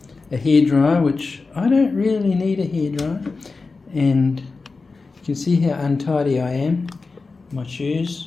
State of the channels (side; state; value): right; quieter; 4.1 dB